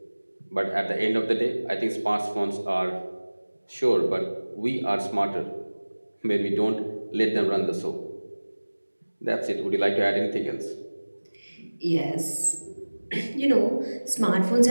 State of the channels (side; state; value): both; inverted; correlation -1.00